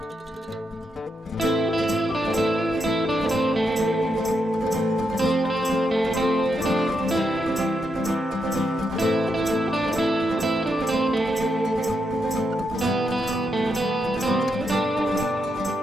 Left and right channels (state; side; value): normal; both; correlation 0.82